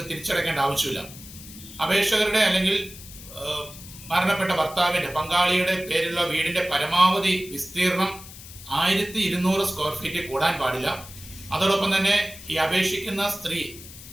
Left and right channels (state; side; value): noise; left; hiss, 16 dB below the sound